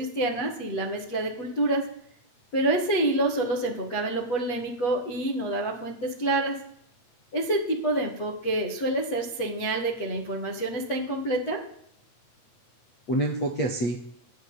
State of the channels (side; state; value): right; late; 8.2 ms